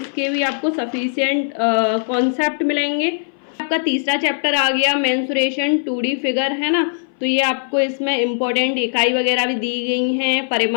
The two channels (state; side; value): silent; right; 61 dB below the other